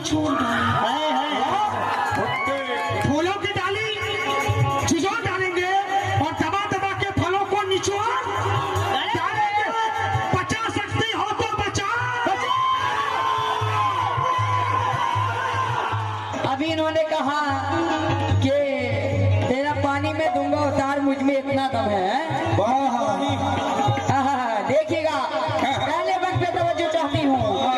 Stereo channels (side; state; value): both; identical; correlation 1.00